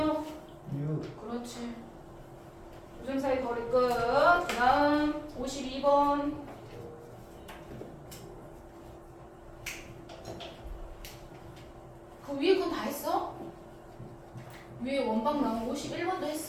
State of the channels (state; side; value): identical; both; correlation 1.00